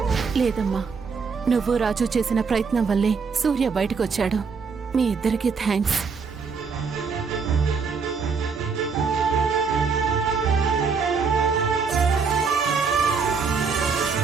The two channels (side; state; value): left; quieter; 5.4 dB